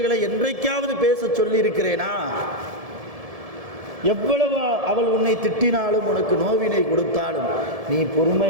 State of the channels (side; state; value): left; late; 1.7 ms